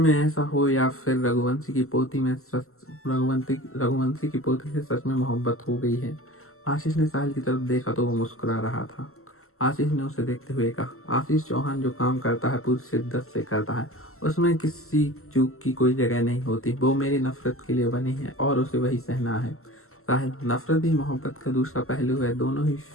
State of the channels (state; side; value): late; right; 0.63 ms